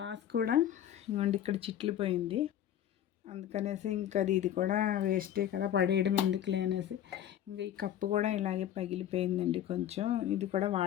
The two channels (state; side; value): quieter; right; 10.9 dB